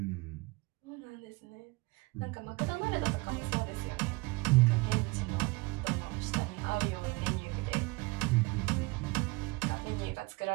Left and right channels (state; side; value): quieter; left; 24.9 dB